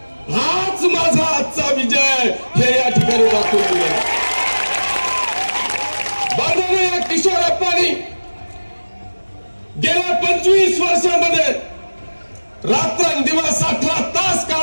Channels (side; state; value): both; inverted; correlation -1.00